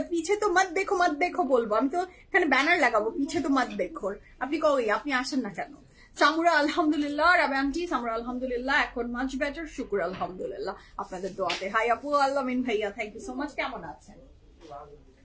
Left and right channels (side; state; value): both; identical; correlation 1.00